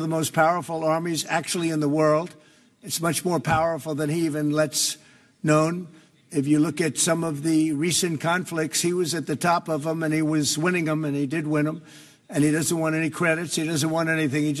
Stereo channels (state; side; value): identical; both; correlation 1.00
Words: the most powerful armies actually in the world. It's much more powerful than he even lets known. If you look at some of the recent conflicts, he was at the top of them, and he was winning them, and he did win them. And he doesn't want any credits. He doesn't want anything. He